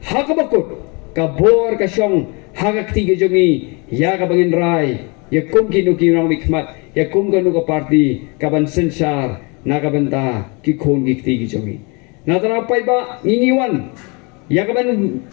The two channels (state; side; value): quieter; right; 30.6 dB